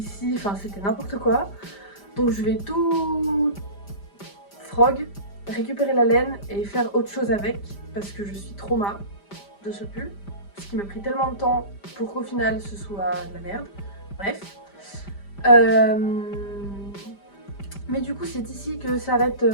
enfin c'était n'importe quoi. Donc je vais tout frog, récupérer la laine et faire autre chose avec parce que je suis trauma de ce pull. Ce qui m'a pris tellement de temps pour qu'au final ce soit de la merde. Bref. Mais du coup c'est ici que s'arrête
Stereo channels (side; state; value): right; late; 5.0 ms